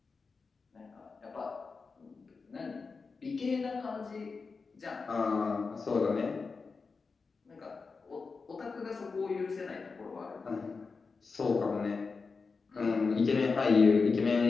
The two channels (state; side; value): quieter; right; 4.6 dB